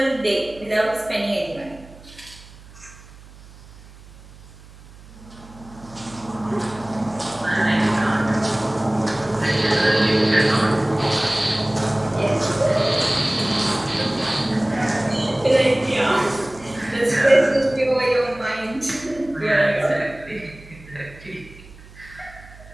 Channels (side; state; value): right; noise; hum, 21 dB below the sound